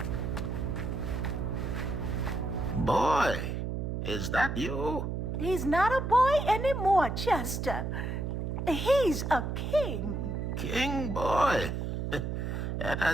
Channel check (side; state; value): right; noise; hum, 2 dB below the sound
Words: Boy, is that you? He's not a boy anymore, Chester. He's a king. King boy. That